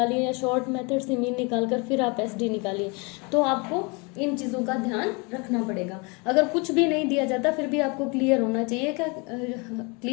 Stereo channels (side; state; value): right; quieter; 30.2 dB